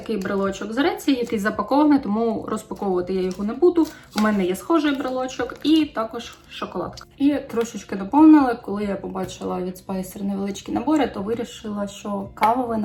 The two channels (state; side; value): identical; both; correlation 1.00